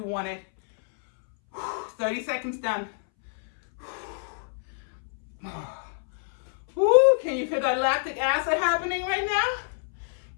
want it. 30 seconds done. Ooh, can you feel that lactic acid happening right now?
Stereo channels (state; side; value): silent; right; 60 dB below the other